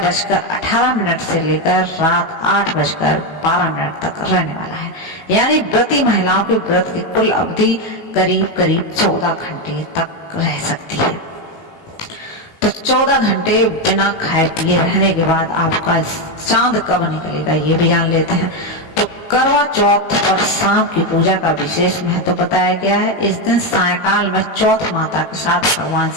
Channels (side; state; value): right; late; 18 ms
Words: से लेकर रात 8:12 तक रहने वाला है। यानी व्रती महिलाओं के व्रत की कुल अवधि करीब 14 घंटे तक रह सकती है। तो 14 घंटे बिना खाए पिए रहने के बाद आपका चांद कब निकलेगा ये भी जान लेते हैं। तो करवा चौथ पर शाम की पूजा का विशेष महत्व बताया गया है। इस दिन सायकाल में चौथ माता के साथ भगवान